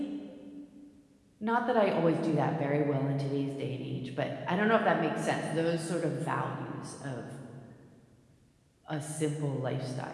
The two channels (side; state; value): both; identical; correlation 1.00